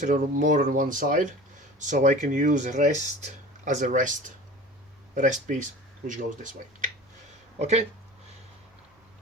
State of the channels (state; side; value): normal; both; correlation 0.39